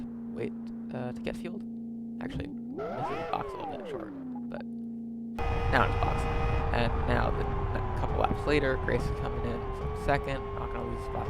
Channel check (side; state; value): both; identical; correlation 1.00